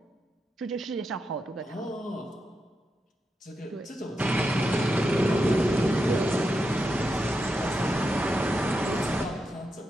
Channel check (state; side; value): normal; both; correlation 0.86